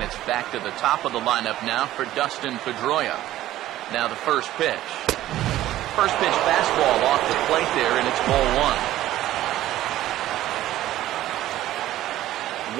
it's back to the top of the lineup now for Dustin Pedroia. Now the first pitch. First pitch fastball off the plate there, and it's ball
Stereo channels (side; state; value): left; quieter; 14.2 dB